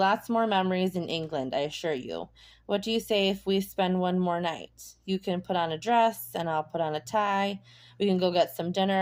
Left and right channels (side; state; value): both; identical; correlation 1.00